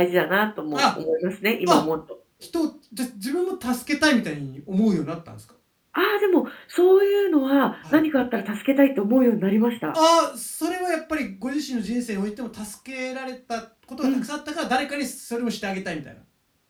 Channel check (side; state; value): both; identical; correlation 1.00